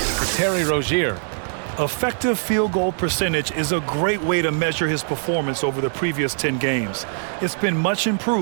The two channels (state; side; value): silent; left; digital silence